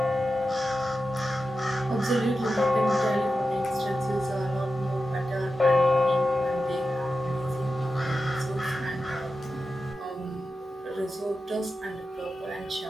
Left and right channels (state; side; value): normal; both; correlation 0.91